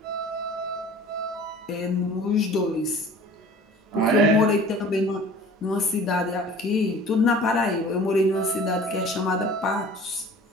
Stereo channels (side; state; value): both; normal; correlation 0.45